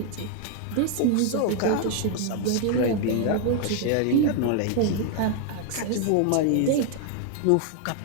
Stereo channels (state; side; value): different; both; correlation 0.00